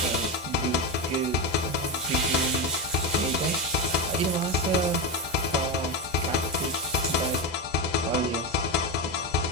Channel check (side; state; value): both; normal; correlation 0.12